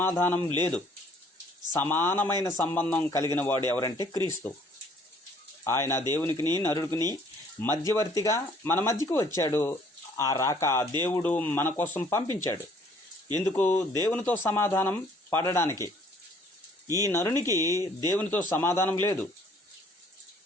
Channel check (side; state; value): both; normal; correlation 0.59